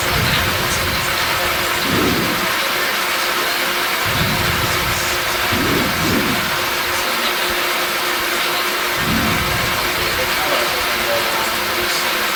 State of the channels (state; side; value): identical; both; correlation 1.00